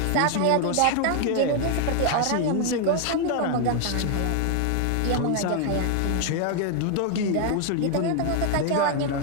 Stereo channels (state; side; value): different; both; correlation 0.00